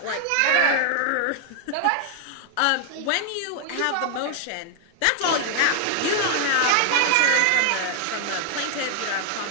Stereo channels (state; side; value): different; both; correlation 0.00